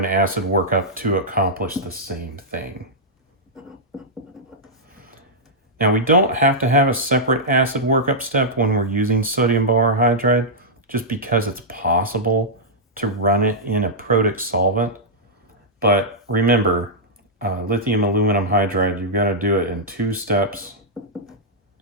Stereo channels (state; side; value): normal; both; correlation -0.09